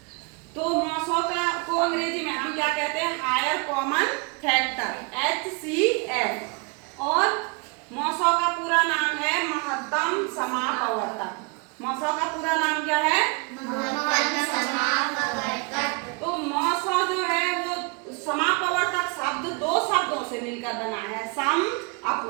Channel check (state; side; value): quieter; left; 32.0 dB